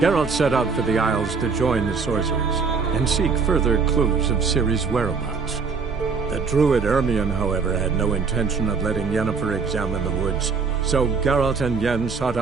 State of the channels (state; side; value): quieter; left; 5.1 dB